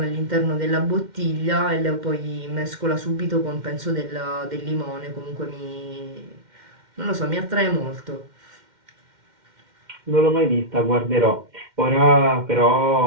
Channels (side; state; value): left; late; 2.1 ms